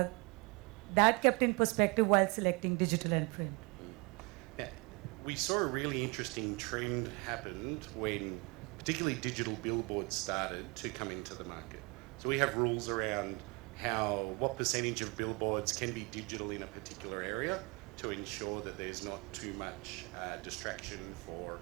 kept in perspective while selecting digital and print? Yeah. We saw a really interesting trend happened when particularly digital billboards started to come into the market. So we have rules around what percentage of billboards can be digital in a particular area to ensure that there's not too much distraction for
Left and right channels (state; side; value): quieter; left; 29.3 dB